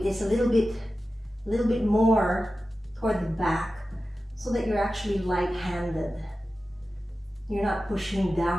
is a little bit more toward the back so that you're actually light-handed. You're not pushing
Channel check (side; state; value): both; normal; correlation 0.94